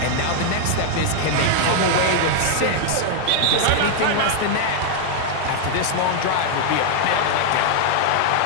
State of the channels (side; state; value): both; different; correlation 0.00